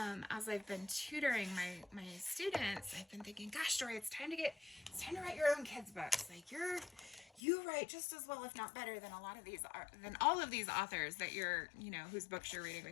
As I've been tutoring my students, I've been thinking, gosh, Dory, it's time to write your own kids' books. Like you write just as well, if not better, than all of these authors that you're, whose books you're reading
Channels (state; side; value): drops out; right; at 7.4 s